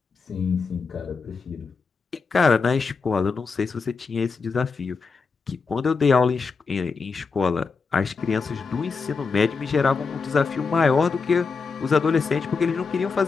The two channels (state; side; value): quieter; right; 4.8 dB